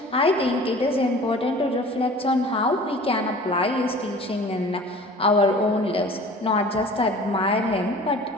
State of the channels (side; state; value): both; normal; correlation 0.44